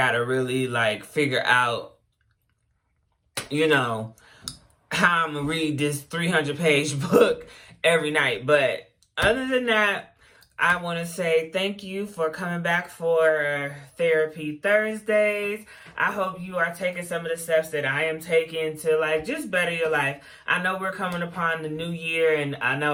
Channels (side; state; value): both; identical; correlation 1.00